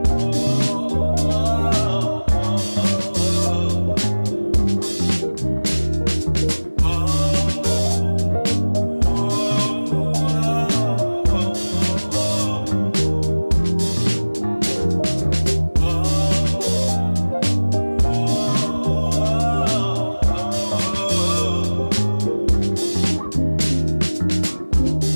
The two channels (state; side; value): inverted; both; correlation -1.00